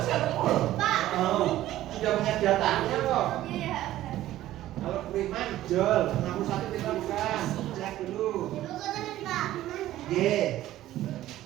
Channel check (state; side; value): quieter; left; 14.3 dB